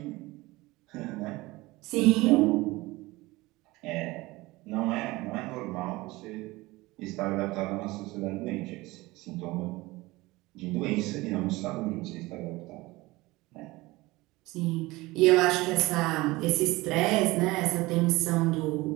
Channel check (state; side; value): quieter; left; 20.8 dB